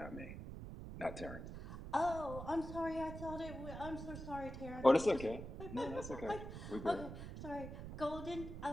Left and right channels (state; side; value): noise; right; rumble, 9 dB below the sound